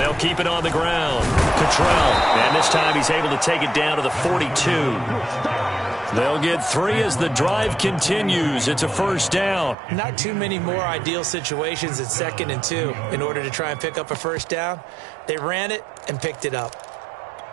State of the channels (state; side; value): drops out; left; at 9.8 s